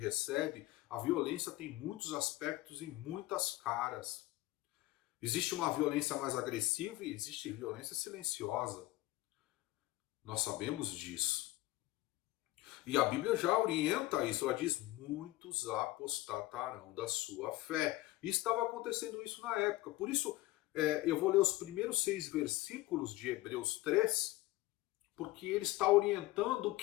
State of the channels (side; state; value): right; quieter; 18.2 dB